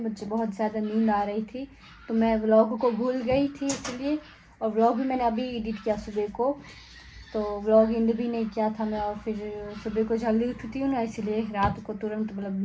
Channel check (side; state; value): both; identical; correlation 1.00